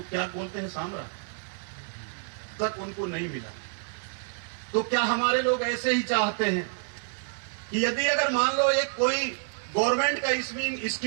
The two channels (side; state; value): left; silent; 56 dB below the other